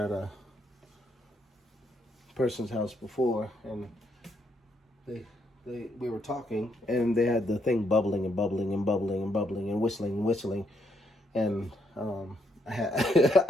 at a person's house before, and we were talking, and they had the thing bubbling and bubbling and bubbling and bubbling and whistling, and I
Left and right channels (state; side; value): normal; both; correlation 0.75